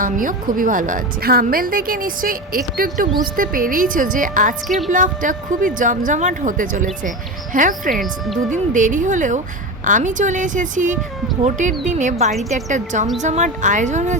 আমিও খুবই ভালো আছি। থাম্বনেল দেখে নিশ্চয়ই একটু একটু বুঝতে পেরেইছো যে আজকের ব্লগটা খুবই জমজমাট হতে চলেছে। হ্যাঁ ফ্রেন্ডস, দুদিন দেরি হলেও আমি চলে এসেছি ভোটের দিনে বাড়িতে একটা জমজমাট আয়োজন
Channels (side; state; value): both; normal; correlation 0.23